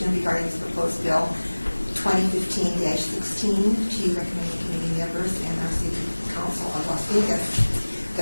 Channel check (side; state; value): both; inverted; correlation -1.00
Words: regarding this proposed bill 2015-16 to recommending committee members and our city council of Las Vegas.